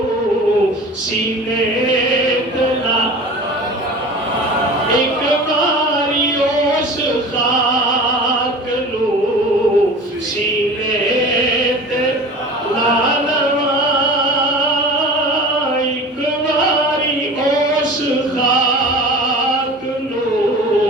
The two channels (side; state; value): both; normal; correlation 0.38